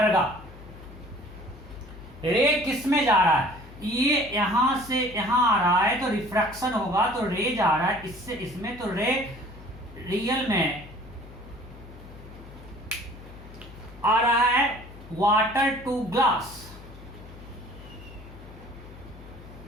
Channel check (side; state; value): left; noise; hum, 17 dB below the sound